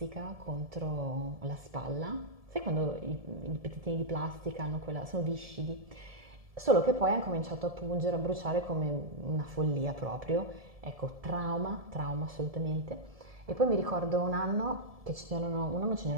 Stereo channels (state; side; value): late; left; 1.7 ms